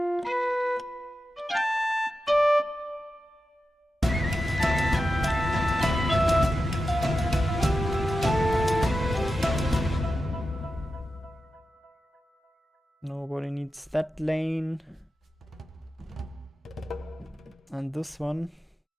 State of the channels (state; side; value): normal; both; correlation 0.91